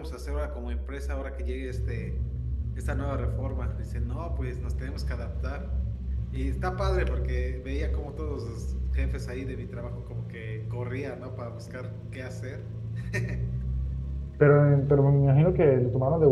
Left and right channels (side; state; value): both; identical; correlation 1.00